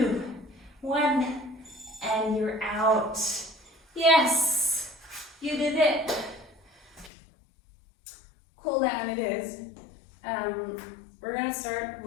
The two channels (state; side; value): drops out; right; at 7.1 s